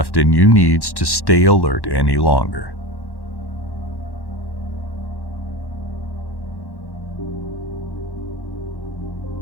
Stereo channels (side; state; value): right; late; 1.1 ms